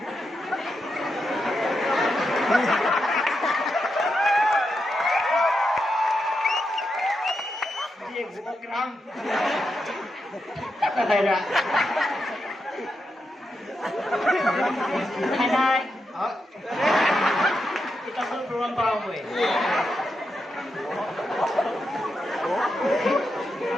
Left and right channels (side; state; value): both; normal; correlation 0.85